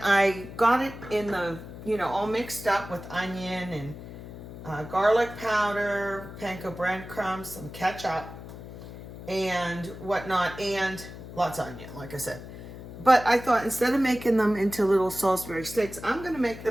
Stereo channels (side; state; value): left; noise; hum, 13 dB below the sound